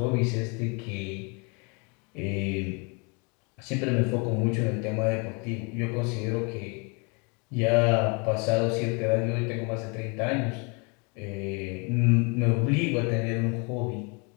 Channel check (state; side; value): quieter; right; 32.7 dB